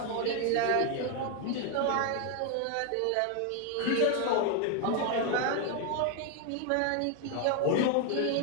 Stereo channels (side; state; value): both; different; correlation 0.01